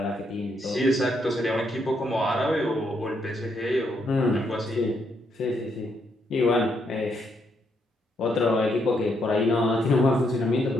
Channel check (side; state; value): both; normal; correlation 0.76